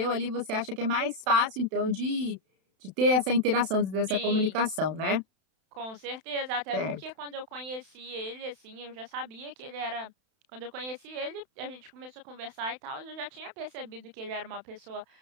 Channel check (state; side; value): late; left; 31 ms